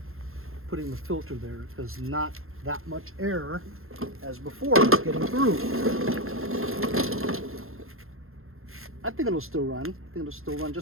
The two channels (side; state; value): left; late; 0.61 ms